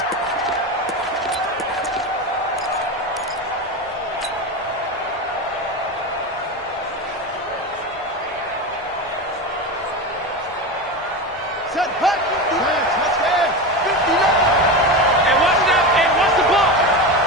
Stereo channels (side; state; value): both; normal; correlation 0.21